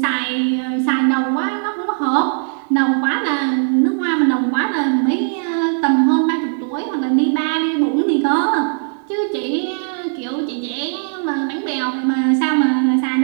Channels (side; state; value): left; silent; 67 dB below the other